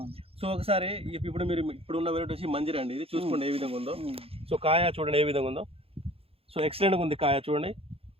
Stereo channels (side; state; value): left; late; 0.28 ms